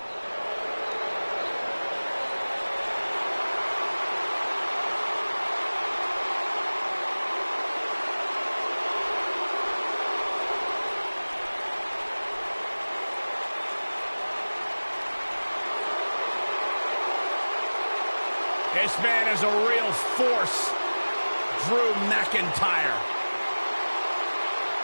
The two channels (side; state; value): both; inverted; correlation -1.00